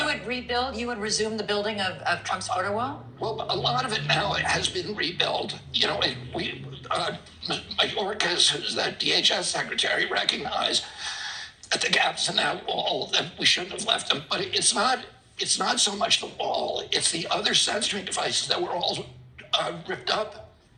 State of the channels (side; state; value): both; identical; correlation 1.00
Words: you would resume the building of Trump's border wall? Well, a lot of it now has been rebuilt. You know, Mayorkas, who's the DHS secretary, recognized that the gaps in that wall, that we shouldn't have left them. But it's not so much the wall, it's the other sensoring devices that were all ripped up.